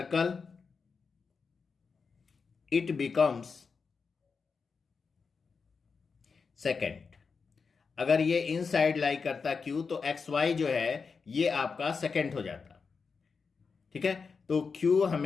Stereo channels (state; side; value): quieter; right; 5.2 dB